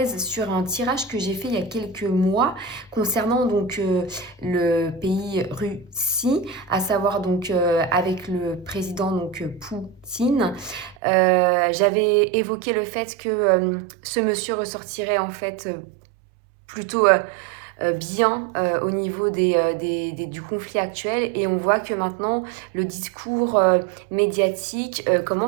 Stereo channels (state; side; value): drops out; left; at 11.0 s